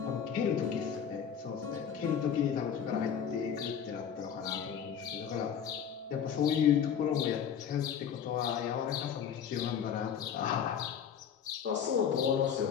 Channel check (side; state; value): right; quieter; 8.1 dB